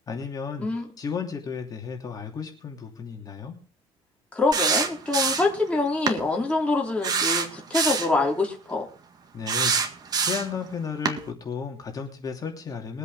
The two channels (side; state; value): both; normal; correlation 0.46